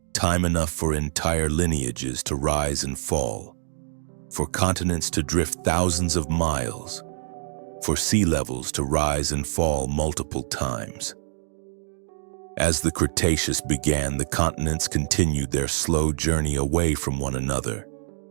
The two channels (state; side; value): silent; left; digital silence